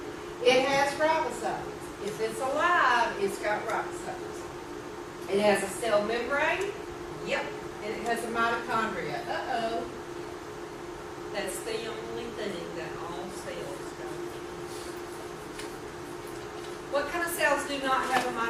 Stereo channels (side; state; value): both; identical; correlation 1.00